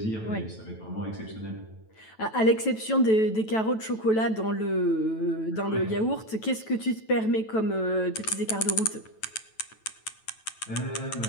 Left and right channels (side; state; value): right; late; 9.1 ms